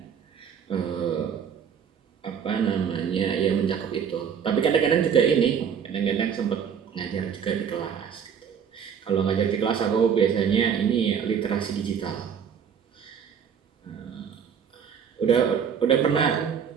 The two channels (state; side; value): quieter; left; 7.5 dB